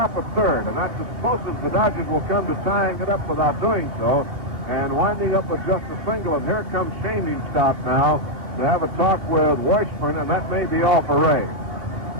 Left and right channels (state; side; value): late; left; 2.8 ms